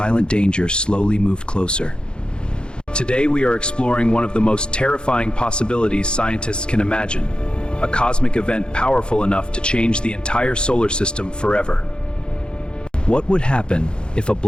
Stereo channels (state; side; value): late; right; 0.051 ms